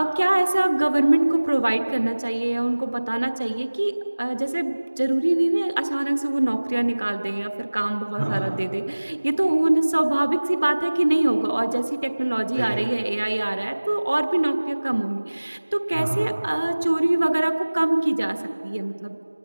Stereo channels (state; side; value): inverted; both; correlation -1.00